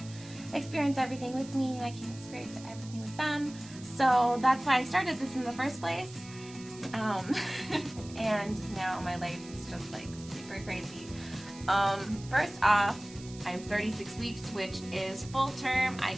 experience everything with me and I can't experience everything with them. So that's why I started this in the first place. And now my life is just like super crazy. First off, I'm 36 weeks, which is full term. I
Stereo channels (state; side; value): noise; right; hiss, 18 dB below the sound